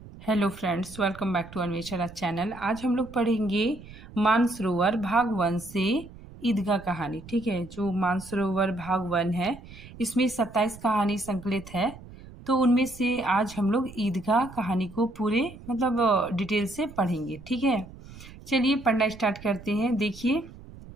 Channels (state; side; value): noise; right; rumble, 18 dB below the sound